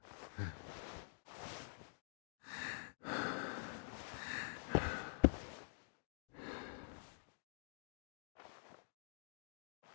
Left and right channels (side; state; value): right; silent; digital silence